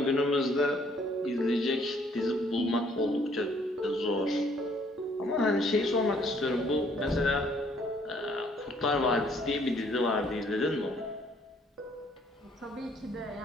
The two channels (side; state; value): both; normal; correlation 0.63